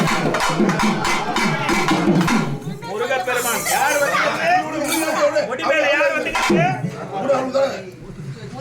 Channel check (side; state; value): both; identical; correlation 1.00